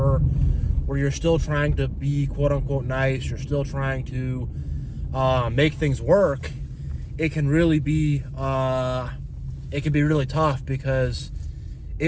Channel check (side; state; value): both; identical; correlation 1.00